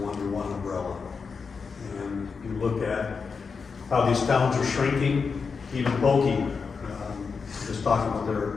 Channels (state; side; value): quieter; right; 5.3 dB